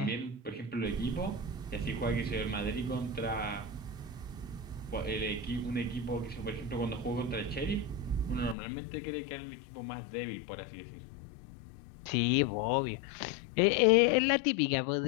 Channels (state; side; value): drops out; right; at 8.6 s